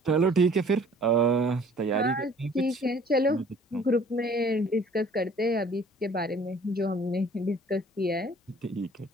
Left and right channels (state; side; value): normal; both; correlation 0.53